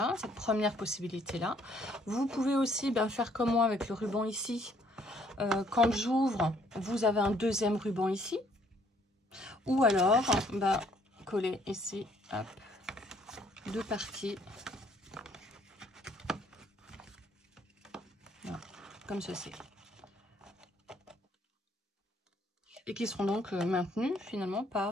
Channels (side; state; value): both; normal; correlation 0.64